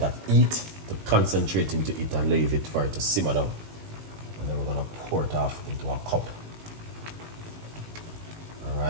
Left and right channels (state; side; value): late; left; 19 ms